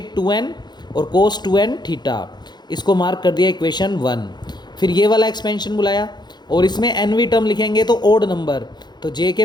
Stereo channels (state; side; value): late; right; 0.21 ms